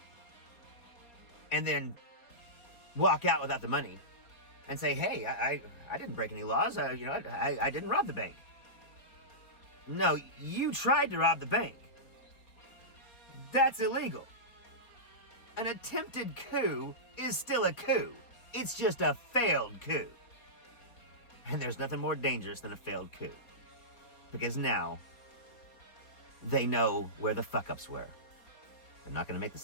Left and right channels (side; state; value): right; late; 4.3 ms